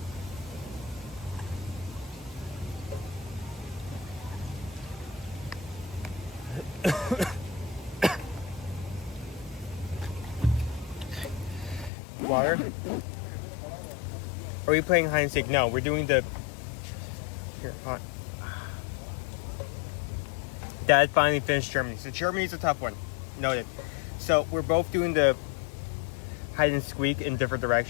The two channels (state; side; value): drops out; right; at 11.9 s